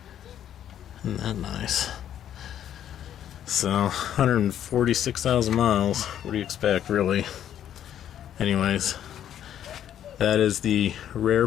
Isn't that nice? So 146,000 miles. What do you expect, really? Anyways, that is the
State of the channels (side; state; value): right; quieter; 10.4 dB